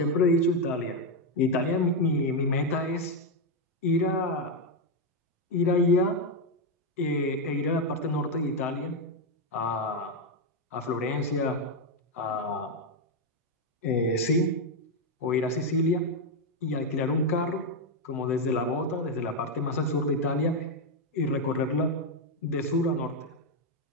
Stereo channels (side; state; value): both; normal; correlation 0.04